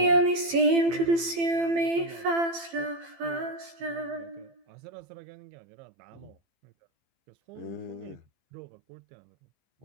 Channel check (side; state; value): left; late; 15 ms